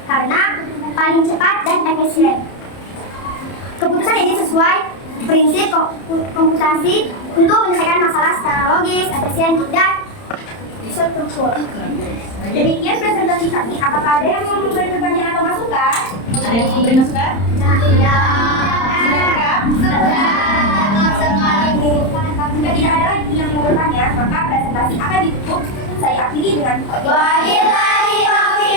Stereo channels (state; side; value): late; right; 30 ms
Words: karena paling cepat dan efisien. Keputusan ini sesuai prinsip komputasi untuk menyelesaikan masalah secara logis, efisien, dan struktur. Demikian presentasi kami. Apakah ada yang mau memberi pertanyaan atau masukan? Ada yang mau memberi masukan? Ya. Sudah lengkap? Jika tidak ada lagi yang mau bertanya, maka presentasi akan ditutup. Saya akhiri dengan wabillahi